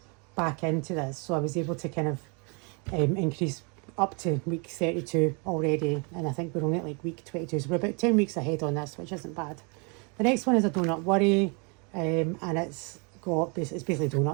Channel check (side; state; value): left; quieter; 33.3 dB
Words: back into this. So I was able to kind of increase up to week 32 already, and I think we're only at like week 22, so we're about 10 weeks ahead on this, which isn't bad. The next one is a Donut Worry, and it's basically